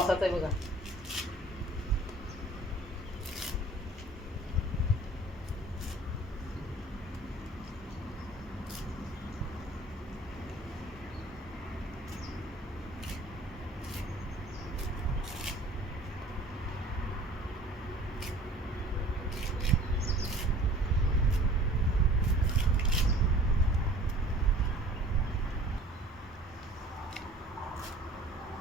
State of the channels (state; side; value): normal; both; correlation 0.48